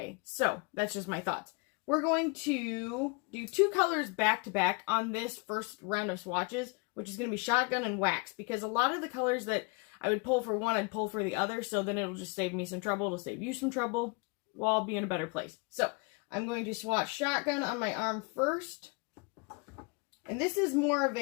So, that's just my thoughts. We're going to do two colors back to back on this first round of swatches, which is going to be shotgun and wax, because a lot of the colors that I would pull for one, I'd pull for the other, so then it'll just save me some trouble. It'll save you some trouble. We'll all be in a better place. So, I'm going to swatch shotgun on my arm first. And this is more of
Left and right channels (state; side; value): quieter; right; 31.6 dB